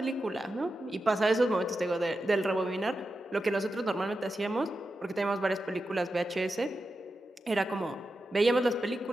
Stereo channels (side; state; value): both; normal; correlation 0.90